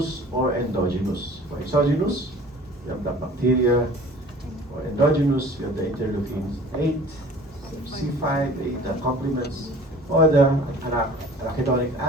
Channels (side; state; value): both; normal; correlation 0.46